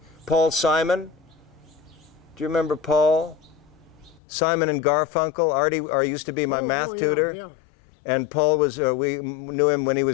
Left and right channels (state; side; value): drops out; right; at 4.2 s